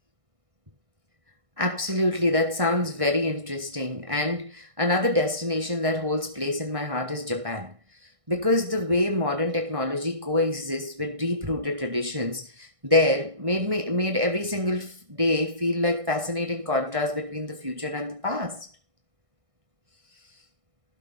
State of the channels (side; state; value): left; late; 1.6 ms